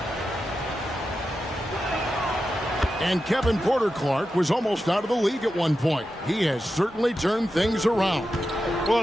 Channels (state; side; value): normal; both; correlation 0.90